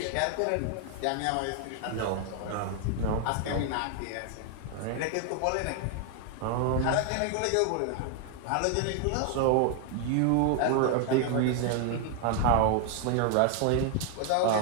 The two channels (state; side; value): different; both; correlation 0.00